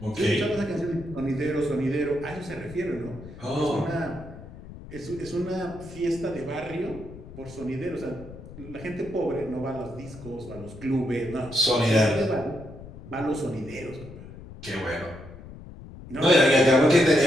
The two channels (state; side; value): noise; left; rumble, 15 dB below the sound